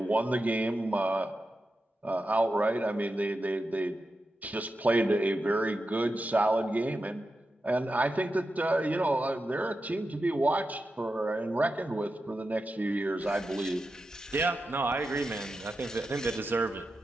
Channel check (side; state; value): both; normal; correlation 0.90